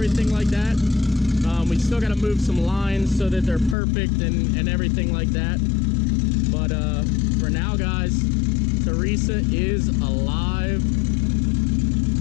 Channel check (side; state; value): right; drops out; at 3.8 s